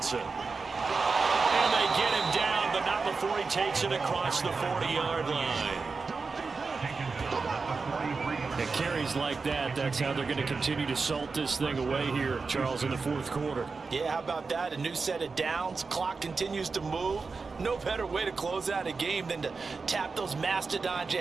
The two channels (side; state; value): left; quieter; 4.5 dB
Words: And they get him down, but not before he takes it across the 40-yard line. And carries like that, that's how they're going to continue to salt this thing away here, Charles, in the 4th quarter. Yeah, how about that? A new set of downs. Clock continues to move. No better way to close out a game than to tap those mastodons you